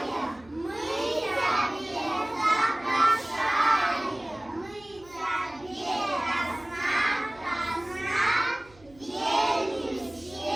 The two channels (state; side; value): noise; right; hum, 27 dB below the sound